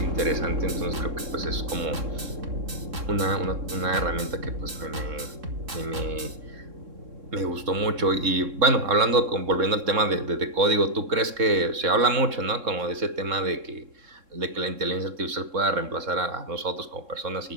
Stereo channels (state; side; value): late; left; 3.7 ms